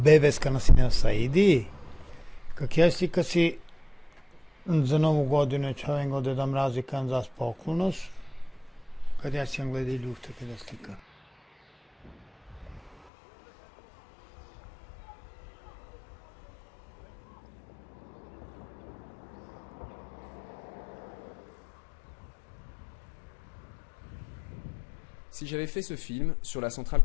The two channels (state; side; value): drops out; right; at 12.9 s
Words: si ne saidi, kak jesi kad si za novu godinu čovjek ode da mrazi kan za spokojnost, kad ja sam gledi ljufte kada slika. Si j'avais fait ce film sur la centrale